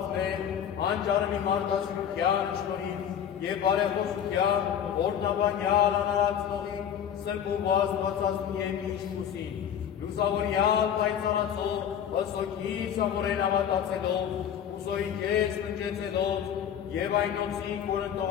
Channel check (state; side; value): quieter; right; 9.0 dB